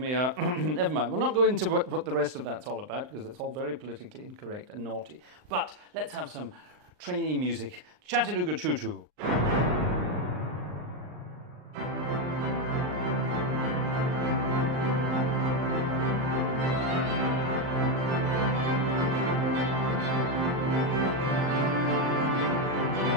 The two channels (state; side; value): late; left; 39 ms